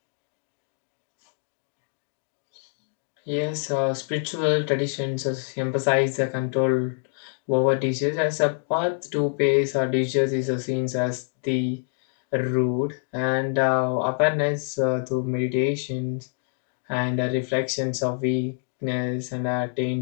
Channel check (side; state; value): right; silent; 61 dB below the other